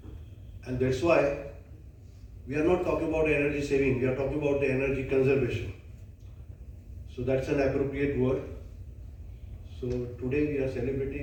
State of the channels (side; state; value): both; identical; correlation 1.00